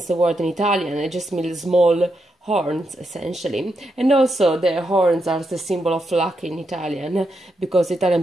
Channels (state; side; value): normal; both; correlation 0.83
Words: the word in Italian. It just means small horns essentially, and also the horns are the symbol of luck in Italian because